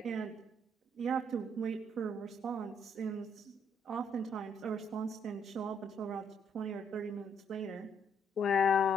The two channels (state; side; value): normal; both; correlation 0.70